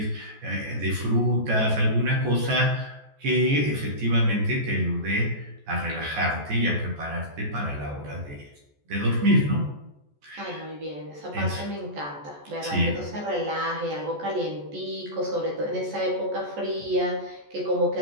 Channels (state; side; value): late; left; 14 ms